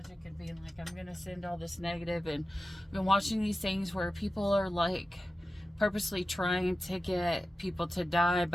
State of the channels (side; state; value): both; normal; correlation 0.94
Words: and being like, I'm gonna send all this negative, and I've been watching these things where people are like purposely trying to get people to die